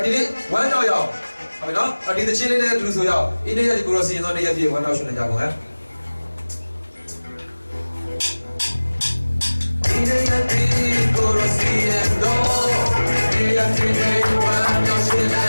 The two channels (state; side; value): inverted; both; correlation -1.00